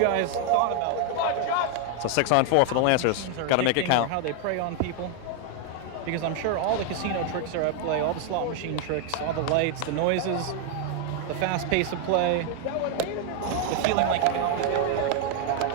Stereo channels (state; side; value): different; both; correlation 0.01